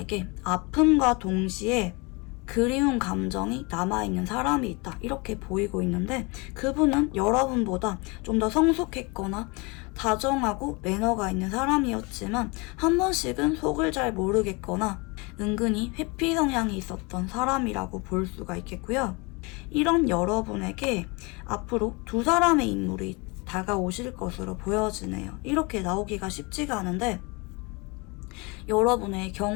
아픔과 동시에 그리운 감정이 남아있는 사람이 있다. 이렇게 보이고 있는데 그분은 여러분보다 좀 더 성숙했거나 다정하고 매너가 있는 사람이었지만 한 번씩은 속을 잘 모르겠거나 은근히 회피 성향이 있었던 사람이라고 볼 수가 있겠고요. 이런 여러분에게 앞으로 두 사람의 인물이 다가오실 것으로 보여지네요. 이렇게 나오기가 쉽지가 않은데 여러분의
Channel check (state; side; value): quieter; right; 28.1 dB